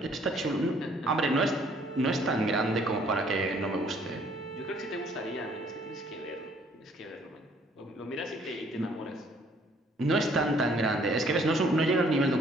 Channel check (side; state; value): both; normal; correlation 0.62